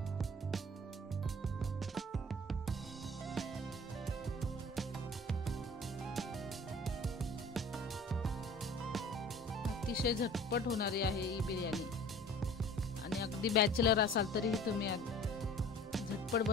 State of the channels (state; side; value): normal; both; correlation 0.46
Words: अतिशय झटपट होणारी आहे ही बिर्याणी आणि अगदी बॅचलर असाल तरीही तुम्ही झटपट